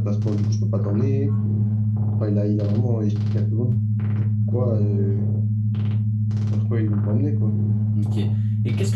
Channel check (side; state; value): both; identical; correlation 1.00